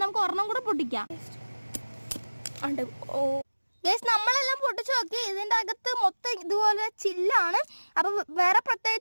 നമുക്ക് ഒരെണ്ണം കൂടെ പൊട്ടിക്കാം. നമ്മളെല്ലാം പൊട്ടിച്ചു നോക്കി, ഇതിൻ്റെ അകത്ത് മൊത്തം ഇതുപോലെ ചില്ലാണ്. അപ്പം വേറെ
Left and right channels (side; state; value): both; inverted; correlation -1.00